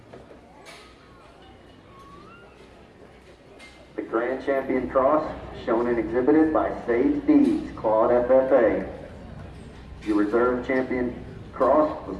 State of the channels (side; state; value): both; identical; correlation 1.00